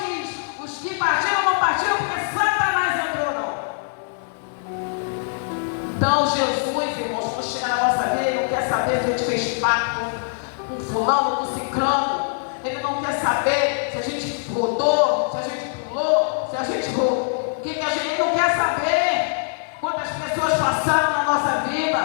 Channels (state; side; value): silent; right; 58 dB below the other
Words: Os que partiram, não partiram porque Satanás entrou, não. Então, Jesus, irmãos, quando chega na nossa vida, Ele não quer saber se a gente fez pacto com fulano, com ciclano. Ele não quer saber se a gente rodou, se a gente pulou, se a gente roubou. O que a gente não quer saber? Quantas pessoas passaram na nossa vida.